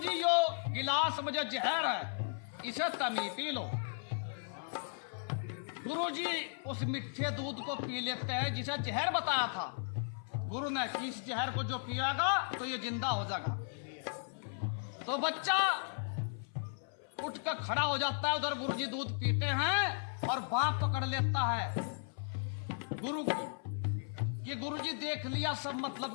यो गिलास में जो जहर है, इसे तमी पी लो। गुरुजी उस मीठे दूध को पी लेते हैं जिसे जहर बताया था। गुरु ने इस जहर को जो पिएगा तो ये जिंदा हो जाएगा। तो बच्चा उठ कर खड़ा हो जाता है, उधर गुरुजी दूध पीते हैं और बाप पकड़ लेता है गुरु को, कि गुरुजी देख लिया सब मतलब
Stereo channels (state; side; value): silent; right; 54 dB below the other